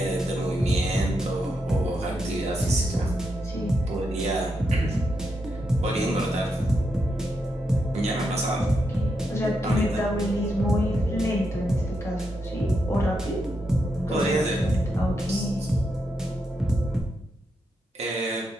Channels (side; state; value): both; normal; correlation 0.83